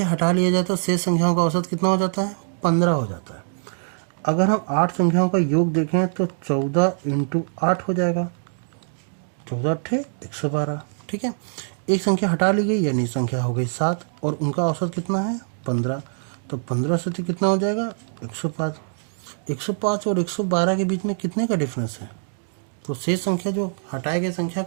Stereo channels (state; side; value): silent; left; digital silence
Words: हटा लिया जाए तो शेष संख्याओं का औसत कितना हो जाता है 15 हो जाता है। अगर हम 8 संख्याओं का योग देखें तो 14 × 8 हो जाएगा, 14 8 112। ठीक है, एक संख्या हटा ली गई यानी संख्या हो गई 7 और उनका औसत कितना है 15, तो 15 से तो कितना हो जाएगा 105। 105 और 112 के बीच में कितने का डिफरेंस है, तो शेष संख्या जो हटाई गई संख्या